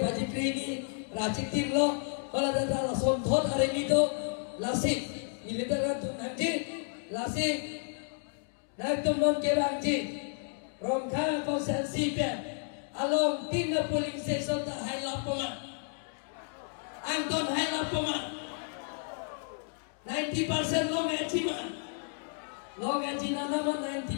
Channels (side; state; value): right; silent; 57 dB below the other